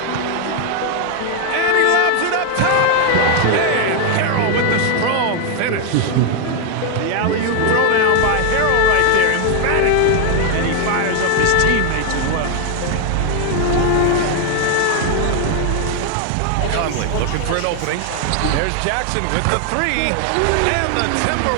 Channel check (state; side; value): different; both; correlation 0.00